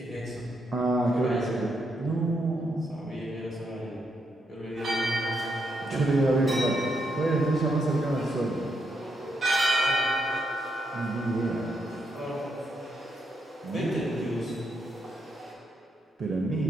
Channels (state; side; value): normal; both; correlation 0.79